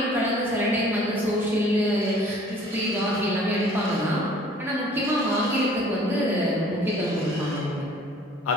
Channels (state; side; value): normal; both; correlation 0.53